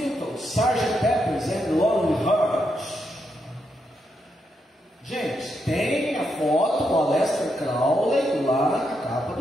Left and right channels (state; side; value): normal; both; correlation 0.81